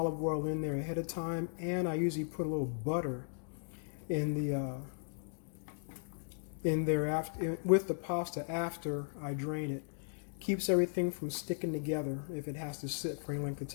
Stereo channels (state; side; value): silent; right; digital silence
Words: oil in there ahead of time, and I usually put a little butter in there after, with the pasta after I drain it. Keeps everything from sticking together if it has to sit for any length of